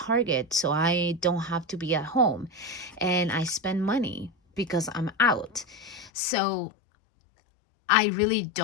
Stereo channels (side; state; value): right; drops out; at 6.1 s